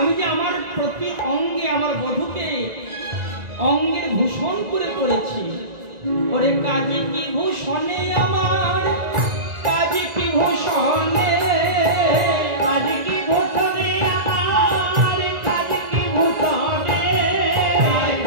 যে আমার প্রতি অঙ্গে আমার বধূকে অঙ্গের ভূষণ করে করেছি, ওরে কাজে কি ভূষণে আমার, কাজে কি ভূষণে, কাজে কি ভূষণে আমার, কাজে কি ভূষণে,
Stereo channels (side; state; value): left; late; 1.9 ms